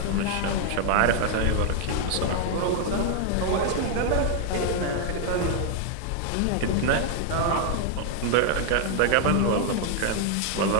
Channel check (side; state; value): both; different; correlation 0.00